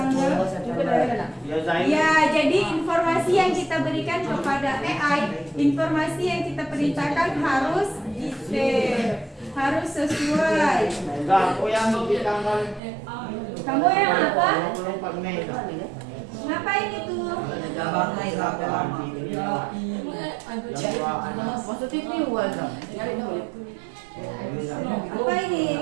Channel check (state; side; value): drops out; left; at 12.8 s